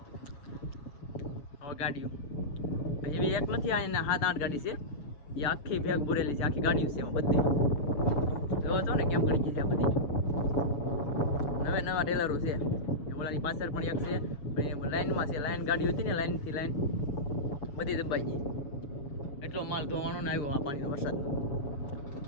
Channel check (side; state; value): right; late; 6.9 ms